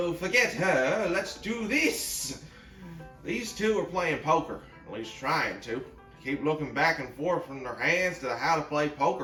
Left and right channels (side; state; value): both; identical; correlation 1.00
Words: forget her. Let's do this. These two are playing poker, at least trying to. Keep looking back and forth from their hands to the how to play